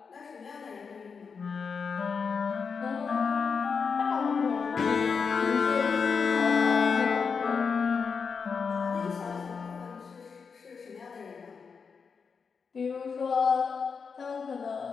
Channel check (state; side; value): quieter; right; 5.6 dB